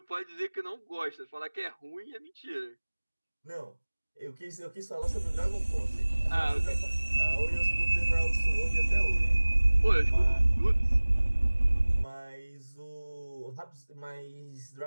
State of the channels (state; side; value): inverted; both; correlation -1.00